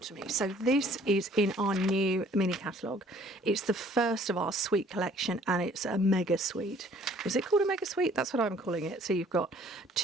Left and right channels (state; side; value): normal; both; correlation 0.57